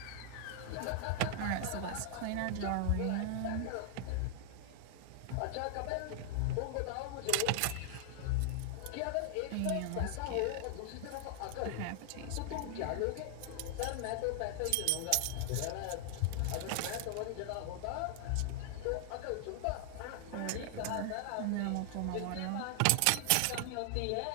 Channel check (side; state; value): both; different; correlation 0.00